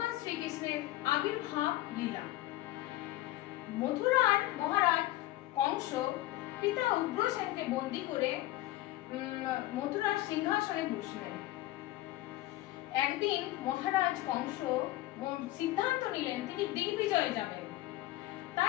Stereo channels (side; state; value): right; quieter; 16.5 dB